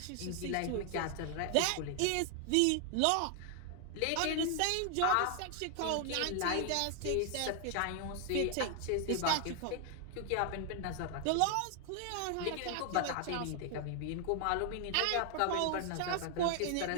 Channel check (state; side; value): different; both; correlation 0.00